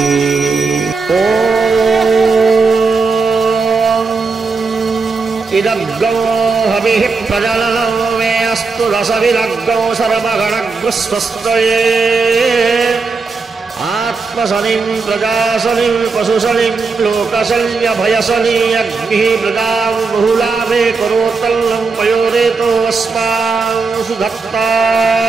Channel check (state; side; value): quieter; left; 4.4 dB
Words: ओम इदग्गो हविः प्रजननो मे अस्तु रसविदग्गो सर्वगणग्रस्वस्तये आत्मशनिं प्रजाशनिं पशुशनिं लोकशल्यभयशनि अग्निः प्रजां बहुलाभे करोत्तल्लं पयोरेतो अस्मान्